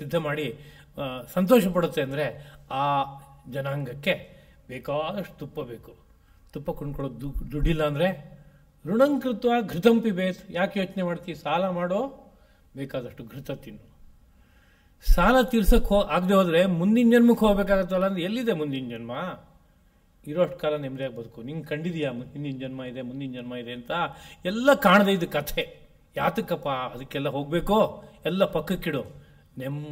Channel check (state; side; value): identical; both; correlation 1.00